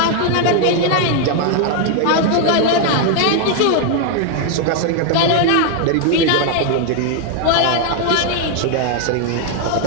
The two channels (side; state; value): both; different; correlation 0.00